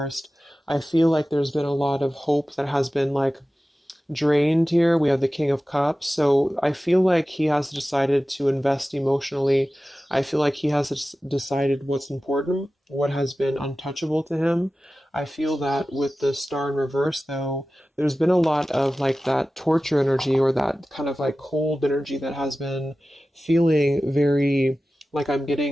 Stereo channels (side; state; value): both; normal; correlation 0.95